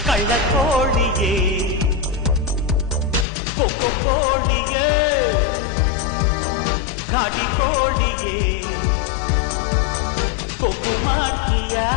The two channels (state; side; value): drops out; right; at 3.2 s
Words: ಕಳ್ಳ ಕೋಳಿಯೇ ಕೊಕ್ಕೊ ಕೋಳಿಯೇ ಘಾಟಿ ಕೋಳಿಯೇ ಕೊಬ್ಬು ಮಾಡ್ತೀಯ